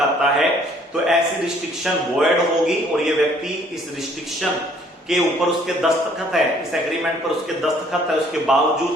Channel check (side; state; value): both; normal; correlation 0.61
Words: है तो ऐसी रिस्ट्रिक्शन वॉइड होगी और ये व्यक्ति इस रिस्ट्रिक्शन के ऊपर उसके दस्तखत है, इस एग्रीमेंट पर उसके दस्तखत है, उसके